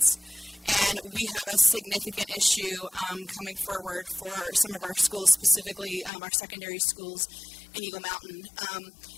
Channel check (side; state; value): right; drops out; at 6.1 s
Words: And we have a significant issue coming forward for some of our schools, specifically our secondary schools in Eagle Mountain.